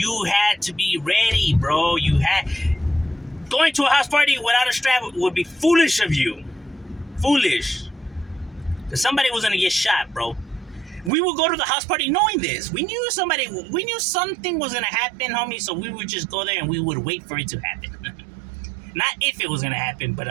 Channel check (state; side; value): drops out; left; at 11.1 s